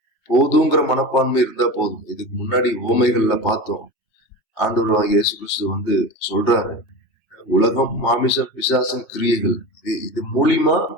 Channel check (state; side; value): late; right; 3.3 ms